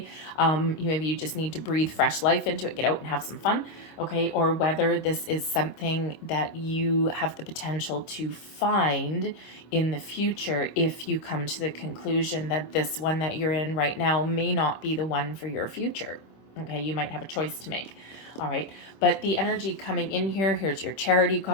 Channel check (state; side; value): late; right; 25 ms